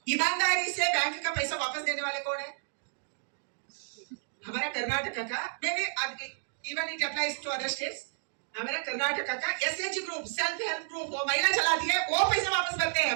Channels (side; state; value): left; silent; digital silence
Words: ईमानदारी से बैंक का पैसा वापस देने वाले कौन है? हमारा कर्नाटक का, मैं even it applies to other states, हमारा कर्नाटक का SHG group, self help group, वो महिला चलाती है, वो पैसे वापस करते